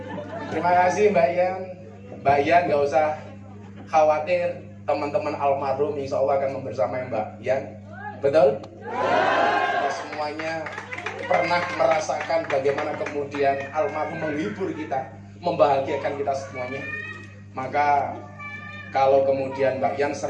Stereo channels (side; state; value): both; identical; correlation 1.00